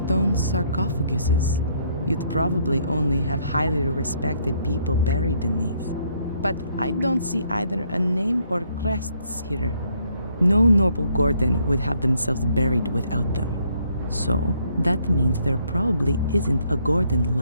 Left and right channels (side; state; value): both; inverted; correlation -0.69